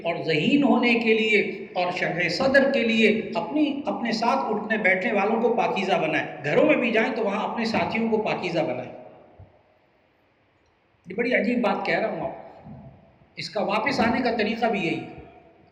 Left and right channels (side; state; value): both; identical; correlation 1.00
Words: اور ذہین ہونے کے لیے اور شرح صدر کے لیے اپنے ساتھ اٹھنے بیٹھنے والوں کو پاکیزہ بنائیں۔ گھروں میں بھی جائیں تو وہاں اپنے ساتھیوں کو پاکیزہ بنائیں۔ یہ بڑی عجیب بات کہہ رہا ہوں آپ کو، اس کا واپس آنے کا طریقہ بھی یہی ہے،